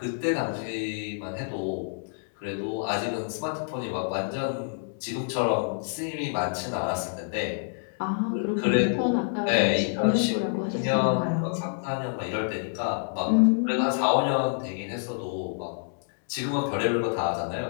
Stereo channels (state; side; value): silent; right; digital silence